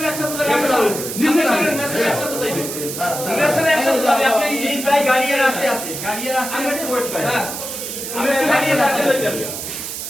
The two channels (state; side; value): noise; right; hiss, 6 dB below the sound